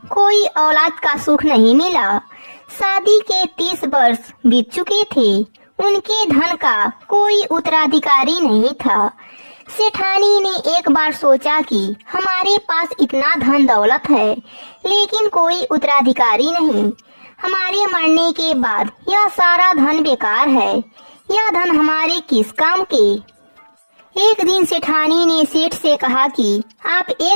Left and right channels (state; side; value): inverted; both; correlation -1.00